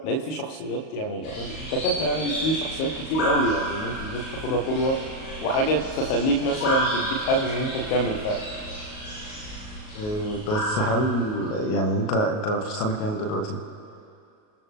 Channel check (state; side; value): late; right; 38 ms